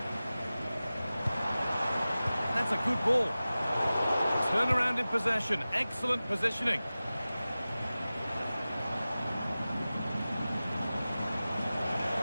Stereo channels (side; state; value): both; inverted; correlation -0.96